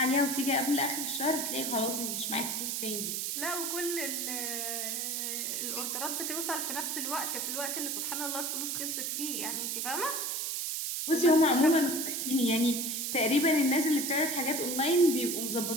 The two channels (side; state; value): right; noise; hiss, 1 dB below the sound